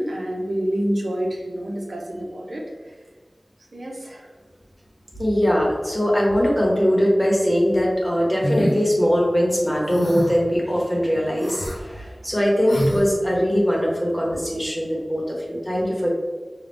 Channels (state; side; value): normal; both; correlation 0.98